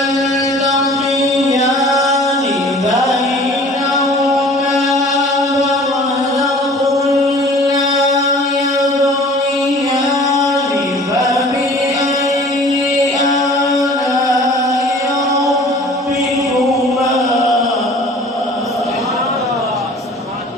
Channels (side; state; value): both; normal; correlation 0.47